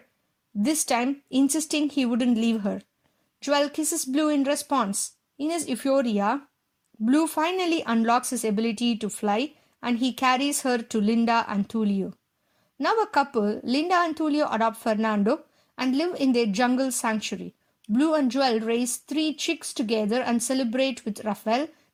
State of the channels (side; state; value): both; identical; correlation 1.00